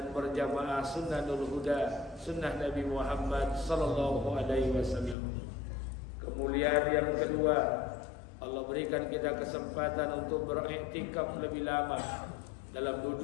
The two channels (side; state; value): right; drops out; at 5.2 s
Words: berjamaah sunnahul huda, sunnah Nabi Muhammad sallallahu alaihi wasallam. Kemuliaan yang kedua, Allah berikan kita kesempatan untuk beriktikaf lebih lama dalam